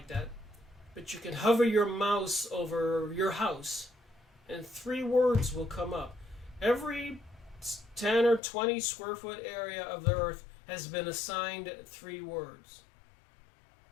that. But you can hover your mouse over your house, and 3 words will come up. Every 10 or 20 square foot area of the Earth has been assigned 3 words.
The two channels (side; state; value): right; drops out; at 8.4 s